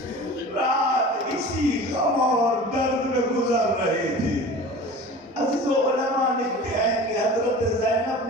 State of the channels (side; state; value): both; normal; correlation 0.38